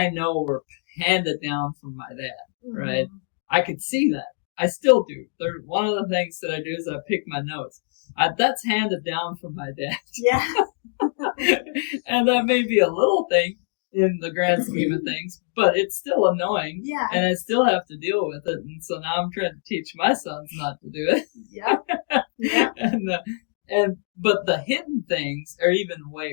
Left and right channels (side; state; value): right; silent; digital silence